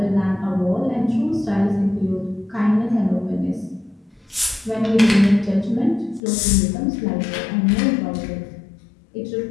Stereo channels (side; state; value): right; drops out; at 6.2 s